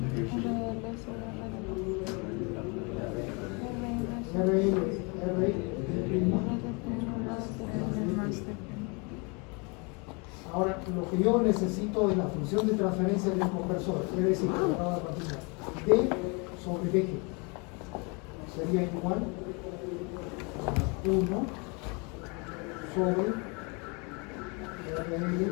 RL, R, ahora, lo que yo necesito de la función de transferencia del conversor, es decir, D sobre BG sería igual a 1 sobre RL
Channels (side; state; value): right; quieter; 31.4 dB